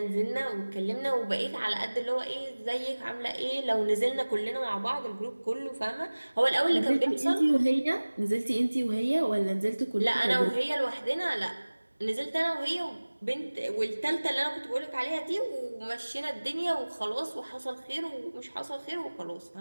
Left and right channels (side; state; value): both; inverted; correlation -1.00